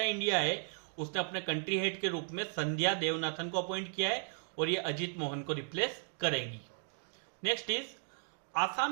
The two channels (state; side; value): silent; left; 54 dB below the other